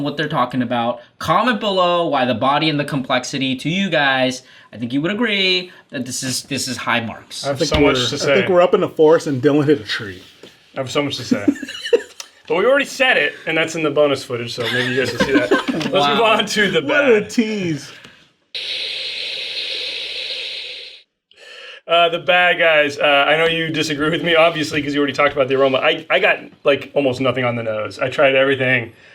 they're talking about. Comment below why the body and the complexity to you guys. I think you would agree that this is high marks. I have so much to say. I think we're up in the forest and Dylan hit a tree. I have so much to say. But we already said it, and that's in the bonus footage, so maybe you guys will see that. Let's move on to the bad. What a tease. The bad guys, I know you disagree with me, obviously, because you already talked about the aroma. I got, almost nothing on the nose. I tried everything.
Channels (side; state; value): both; identical; correlation 1.00